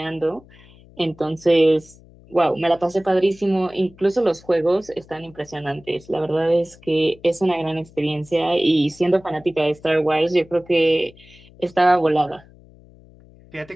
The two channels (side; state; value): left; noise; hum, 25 dB below the sound